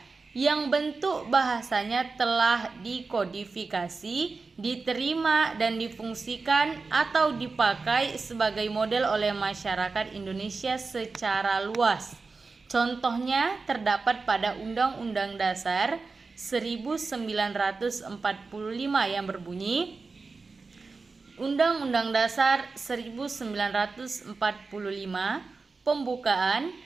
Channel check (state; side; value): quieter; left; 4.2 dB